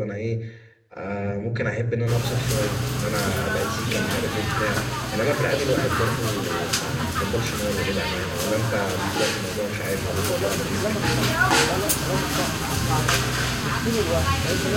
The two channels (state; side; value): identical; both; correlation 1.00